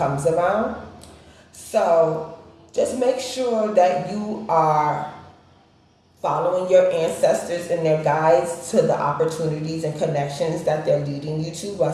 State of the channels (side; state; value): both; identical; correlation 1.00